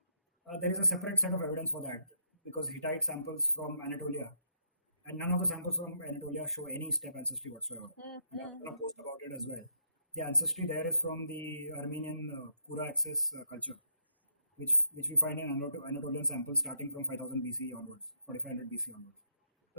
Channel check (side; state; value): both; inverted; correlation -0.76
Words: There is a separate set of evidence for that, because Hittite samples from Anatolia, and none of the samples from Anatolia show any steppe ancestry whatsoever. And I'm going to post about it as well. The ancestry there is from the Armenian Kura access culture, which we find in Anatolian samples starting from 5000 BC onwards, 4500 BC onwards.